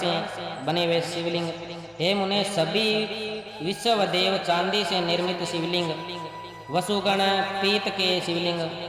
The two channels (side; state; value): both; identical; correlation 1.00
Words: बने हुए शिवलिंग, हे मुने सभी विश्वदेव चांदी से निर्मित शिवलिंग, वसुगण पीत के शिवलिंग,